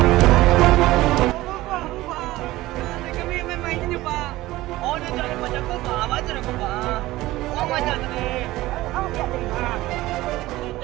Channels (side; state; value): left; quieter; 17.6 dB